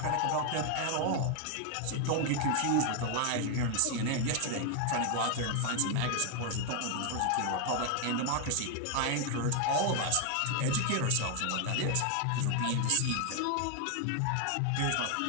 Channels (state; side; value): different; both; correlation 0.00